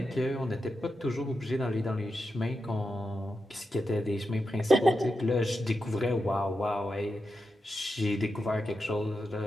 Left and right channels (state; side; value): normal; both; correlation 0.88